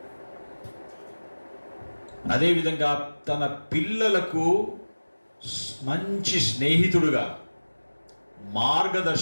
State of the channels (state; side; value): inverted; both; correlation -1.00